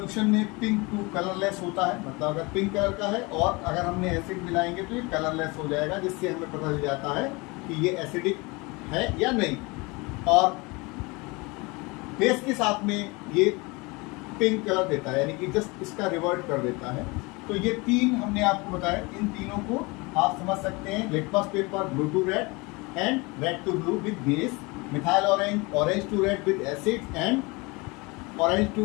में पिंक टू कलरलेस होता है, मतलब अगर पिंक कलर का है और अगर हमने एसिड मिलाएंगे तो ये कलरलेस हो जाएगा, जिससे हमें पता चल जाता है कि ये एसिडिक है या नहीं। और बेस के साथ में ये पिंक कलर देता है, यानी कि जस्ट इसका रिवर्ट कर देता है। तो ये 3 हमने आपको बताया, इन तीनों को आप समझ सकते हैं। Litmus paper blue to red and red to blue with base, methyl orange orange to red with acid and orange to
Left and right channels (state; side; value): quieter; right; 25.9 dB